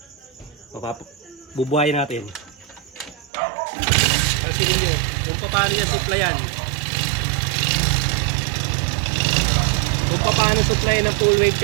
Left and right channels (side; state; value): left; drops out; at 3.3 s